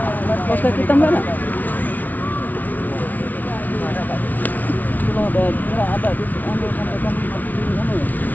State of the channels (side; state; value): right; late; 0.079 ms